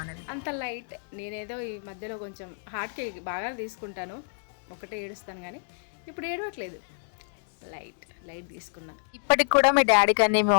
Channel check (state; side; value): silent; right; digital silence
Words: అనేది. అంత లైట్ నేనేదో ఈ మధ్యలో కొంచెం హార్ట్కి బాగా తీసుకుంటాను, ఒకటే ఏడుస్తాను, కానీ ఇప్పుడు ఏడవట్లేదు. లైట్ తీసుకున్నా. ఇప్పటికి కూడా మీ డాడీ కానీ మీ